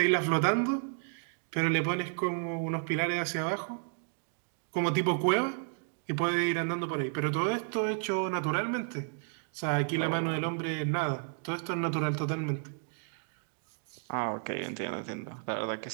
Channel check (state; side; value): silent; left; digital silence